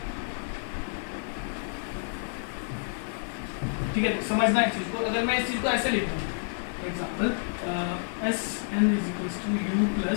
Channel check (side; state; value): right; silent; digital silence